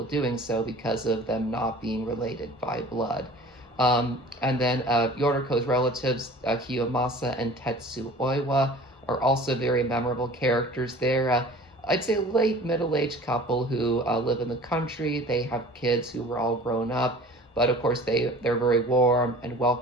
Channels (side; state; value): both; normal; correlation 0.45